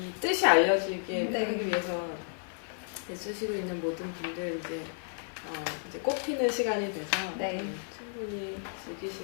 뜻이 알려지게 네. 하기 위해서 애쓰시고 있는 모든 분들 이제 이제 꽃피는 시간이 돼서 네. 충분히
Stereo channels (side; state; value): right; silent; 56 dB below the other